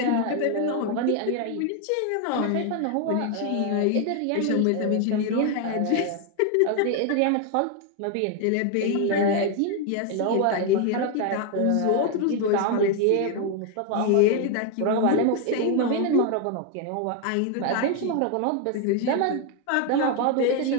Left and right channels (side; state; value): both; different; correlation 0.01